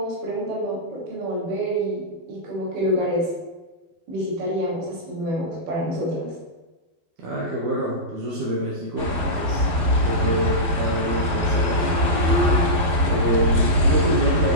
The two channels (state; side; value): late; left; 11 ms